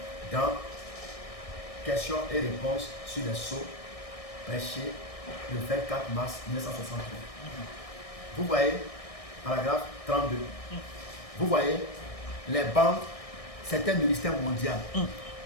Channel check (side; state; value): right; late; 1.6 ms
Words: Dans questions et réponses sur les sceaux prêchés le 24 mars 1963. Vous voyez, paragraphe 32. Vous voyez, les bandes, c'est un ministère mondial.